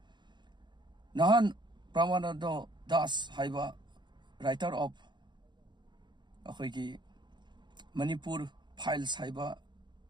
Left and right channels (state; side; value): late; left; 0.22 ms